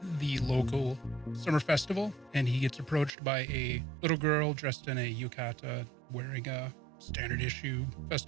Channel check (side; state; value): left; drops out; at 3.1 s